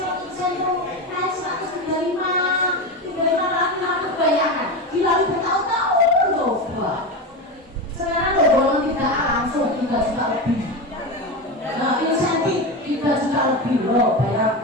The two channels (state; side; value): normal; both; correlation 0.20